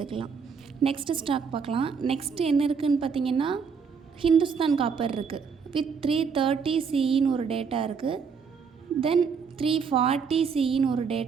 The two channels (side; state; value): left; quieter; 5.9 dB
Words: நெக்ஸ்ட்டு ஸ்டாக் பார்க்கலாம். நெக்ஸ்ட்டு என்ன இருக்குதுன்னு பார்த்தீங்கன்னா ஹிந்துஸ்தான் காப்பர் இருக்குது. வித் 330 CEன்னு ஒரு டேட்டா இருக்குது. தென் 340 CEன்னு ஒரு